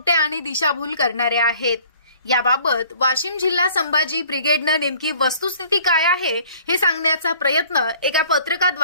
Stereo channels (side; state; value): both; inverted; correlation -0.54